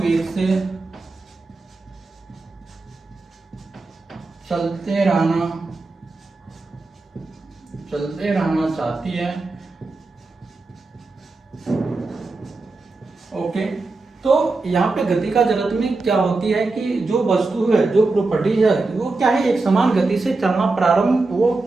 से चलते रहना चाहती है। ओके, तो यहाँ पे गति का जड़त्व में क्या होती है कि जो वस्तु है, जो प्रॉपर्टी है, वो क्या है, एक समान गति से चलना प्रारंभ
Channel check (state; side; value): quieter; left; 3.5 dB